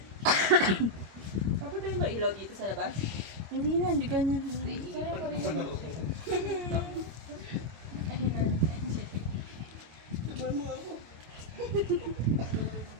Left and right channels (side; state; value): left; late; 25 ms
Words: Papatayin ba ilaw dito sa labas? Hindi na, hindi ganyan. Saya pa rin. Ayun na, Angel. Diba mo ako?